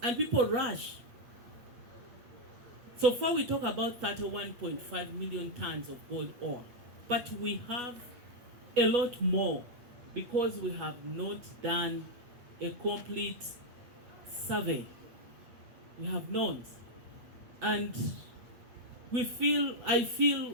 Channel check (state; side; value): late; left; 8.2 ms